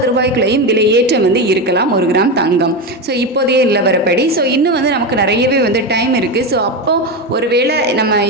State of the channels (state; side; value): normal; both; correlation 0.16